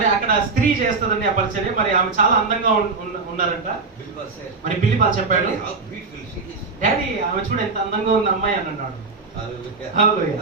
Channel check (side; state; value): left; quieter; 4.2 dB